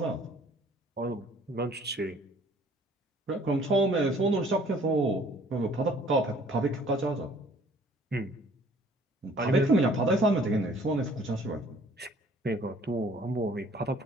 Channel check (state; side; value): normal; both; correlation 0.55